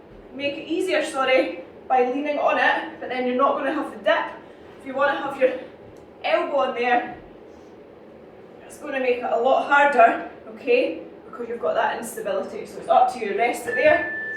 make it easier, sorry, by leaning on it, but then you're not going to have the dip. If you want to have your elbow on there, it's going to make it a lot harder, okay, because you've got that instability. So it's up to you, rest it there.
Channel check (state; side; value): identical; both; correlation 1.00